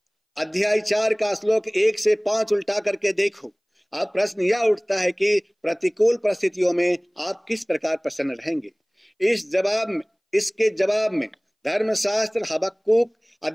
अध्याय 4 का श्लोक 1 से 5 उल्टा करके देखो। अब प्रश्न यह उठता है कि प्रतिकूल परिस्थितियों में आप किस प्रकार प्रसन्न रहेंगे? इसके जवाब में धर्मशास्त्र हबक्कुक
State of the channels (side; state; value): both; identical; correlation 1.00